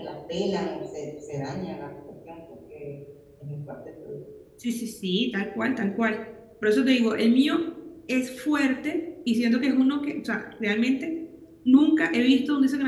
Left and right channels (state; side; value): identical; both; correlation 1.00